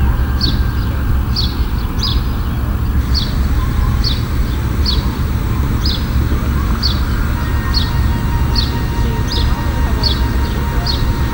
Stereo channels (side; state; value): both; identical; correlation 1.00